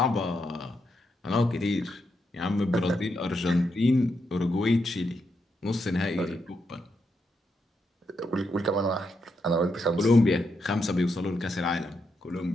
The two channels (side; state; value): both; normal; correlation 0.82